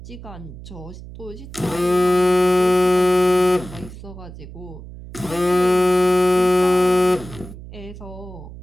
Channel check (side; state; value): right; noise; hum, 15 dB below the sound